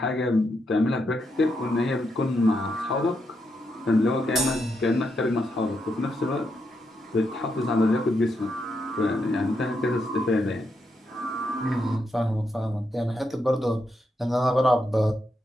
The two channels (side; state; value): both; normal; correlation 0.81